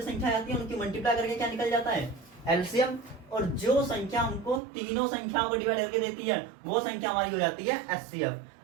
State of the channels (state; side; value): drops out; left; at 4.6 s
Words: संख्या आती है उनकी मल्टीप्लाई करके क्या निकल जाता है एलसीएम, और जो संख्या हमको तीनों संख्याओं को डिवाइड करके देती है वो संख्या हमारी हो जाती है एचसीएफ।